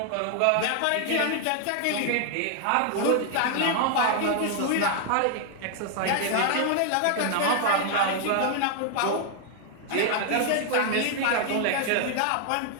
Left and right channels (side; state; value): both; different; correlation 0.00